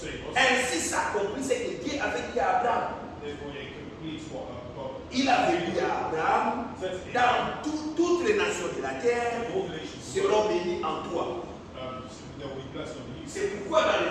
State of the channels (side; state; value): both; identical; correlation 1.00